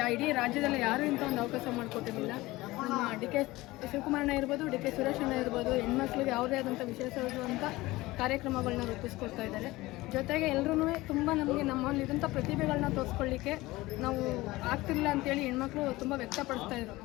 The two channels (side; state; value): right; quieter; 19.5 dB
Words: ಇಡೀ ರಾಜ್ಯದಲ್ಲಿ ಯಾರೂ ಇಂಥ ಒಂದು ಅವಕಾಶ ಮಾಡಿಕೊಟ್ಟಿರಲಿಲ್ಲ. ನಮ್ಮ ಡಿ.ಕೆ. ಶಿವಕುಮಾರಣ್ಣ ಇರ್ಬೋದು, ಡಿ.ಕೆ. ಸುರೇಶಣ್ಣ ಇರ್ಬೋದು, ಹೆಣ್ಮಕ್ಳಿಗೆ ಯಾವುದೇ ಆದಂಥ ವಿಶೇಷವಾದಂಥ ಕಾರ್ಯಕ್ರಮಗಳನ್ನ ರೂಪಿಸ್ಕೊಡ್ತಾ ಇದ್ದಾರೆ. ಜೊತೆಗೆ ಎಲ್ಲರೂ ತುಂಬ ನಮಗೆ ನಮ್ಮಲ್ಲಿದ್ದಂಥ ಪ್ರತಿಭೆಗಳನ್ನ ತೋರಿಸ್ಕೊಳ್ಳಿಕ್ಕೆ ನಾವು ಆಗ್ತಿಲ್ಲ ಅಂತೇಳಿ ಹೆಣ್ಮಕ್ಳು ತುಂಬ ವ್ಯಕ್ತಪಡಿಸ್ತಾ ಇದ್ರು.